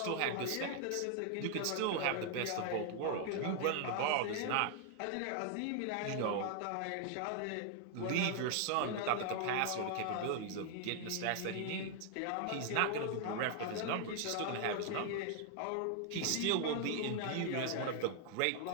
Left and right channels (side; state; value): both; different; correlation 0.00